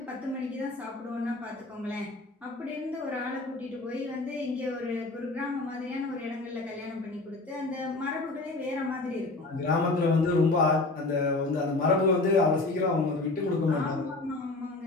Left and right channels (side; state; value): right; quieter; 3.1 dB